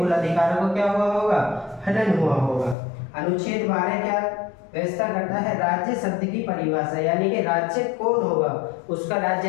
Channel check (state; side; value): drops out; right; at 2.8 s